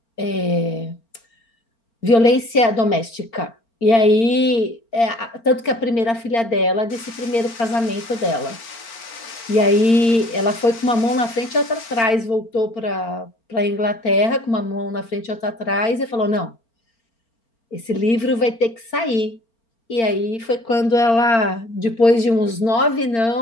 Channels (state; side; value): late; right; 4.4 ms